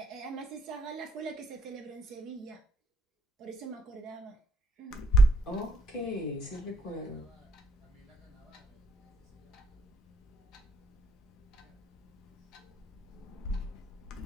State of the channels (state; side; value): normal; both; correlation 0.72